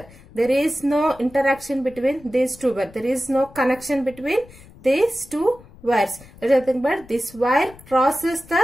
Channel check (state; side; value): noise; left; rumble, 22 dB below the sound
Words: There is no interaction between these two wires. There is no connection between these two wires. There is nothing but this wire crosses